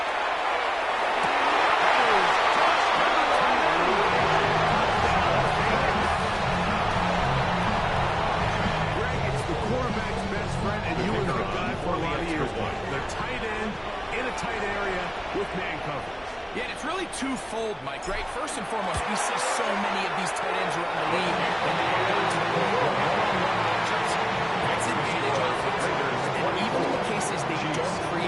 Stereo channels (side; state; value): both; identical; correlation 1.00